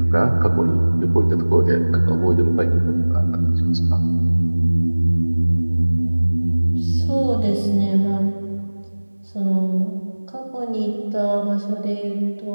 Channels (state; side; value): inverted; both; correlation -1.00